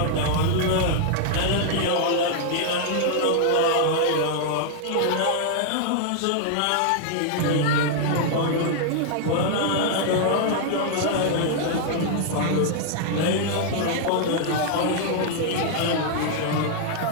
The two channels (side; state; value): both; different; correlation -0.01